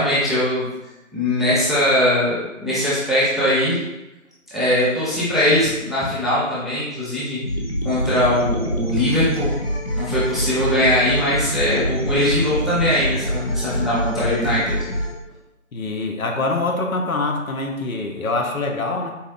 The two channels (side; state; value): both; normal; correlation -0.01